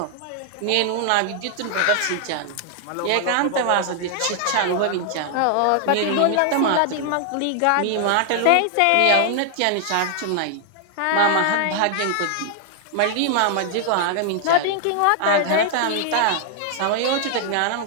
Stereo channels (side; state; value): both; different; correlation 0.00